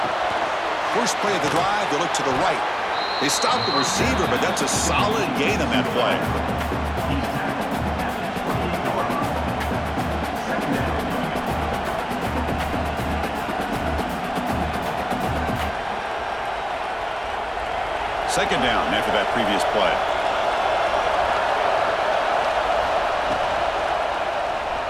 First play of the drive, they look to the right. They stop the receiver, but that's a solid gain on that play. Second down after that previous play.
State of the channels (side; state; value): both; identical; correlation 1.00